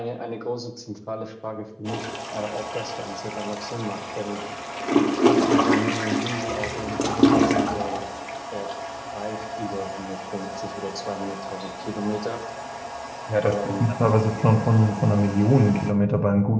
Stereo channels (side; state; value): both; identical; correlation 1.00